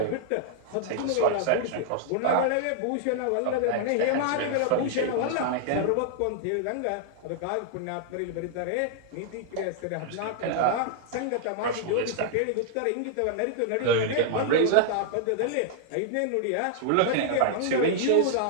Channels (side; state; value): both; different; correlation -0.01